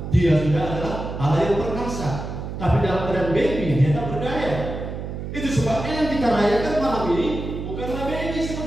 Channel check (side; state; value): right; noise; hum, 7 dB below the sound